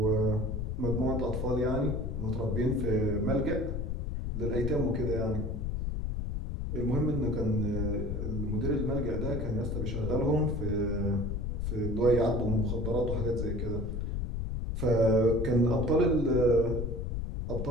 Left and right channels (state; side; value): noise; left; rumble, 2 dB below the sound